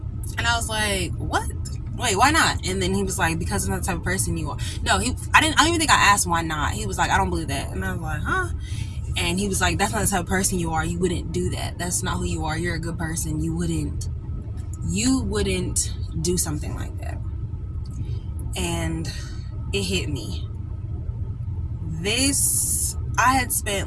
And I was like, what? Wait, why not? And then he was like, because I'm not the type of person you are. No, I don't even think I asked why not. He was like, I don't believe that. And I was like, huh? And he was like, that's not the type of person you are. You wouldn't do that. That's not who you are. You're a good person. You wouldn't do something like that. And it hit me. I had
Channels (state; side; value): identical; both; correlation 1.00